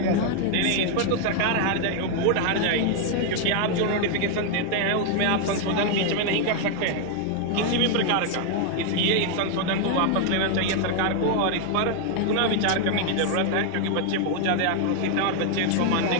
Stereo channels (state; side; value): different; both; correlation 0.00